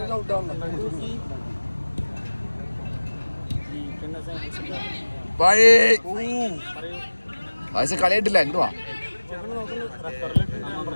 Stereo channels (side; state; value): both; inverted; correlation -1.00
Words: ഫായിസ് കളിയായിട്ടില്ല. എന്തുവാ